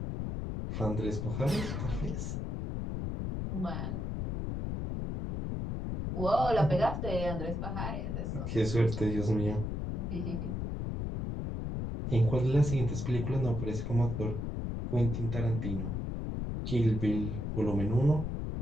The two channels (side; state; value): left; noise; rumble, 3 dB below the sound